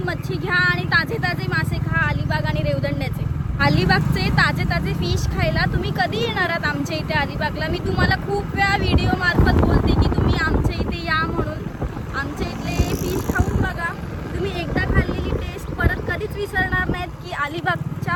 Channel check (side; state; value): both; identical; correlation 1.00